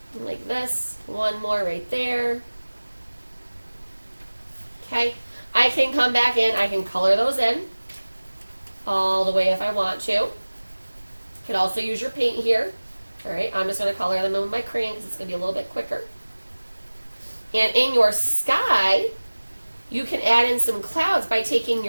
Like this. 1 more right there. Okay. I can come back in. I can color those in all the way if I want to. You could also use your paint here. Alright, I'm just going to color them in with my crayon because it's going to be a little bit quicker. And in your sky, you can add in some clouds by taking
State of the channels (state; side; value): inverted; both; correlation -1.00